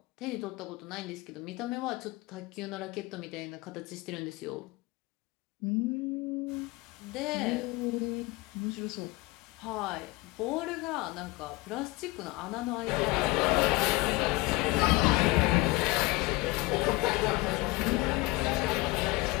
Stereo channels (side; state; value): right; quieter; 22.2 dB